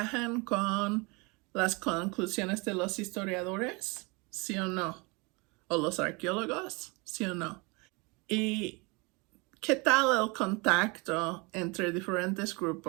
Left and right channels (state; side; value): quieter; left; 27.9 dB